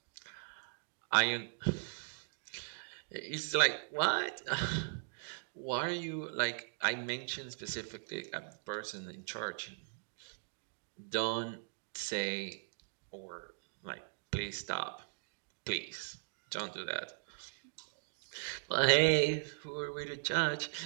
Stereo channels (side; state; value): left; silent; digital silence